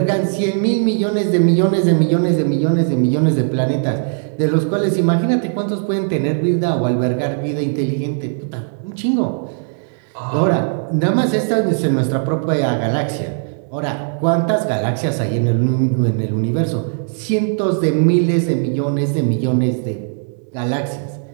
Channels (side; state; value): left; silent; digital silence